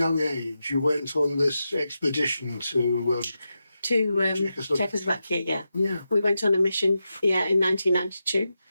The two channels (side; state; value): both; inverted; correlation -0.89